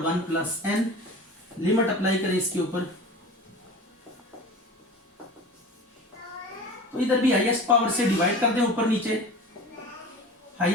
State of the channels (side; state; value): both; normal; correlation 0.36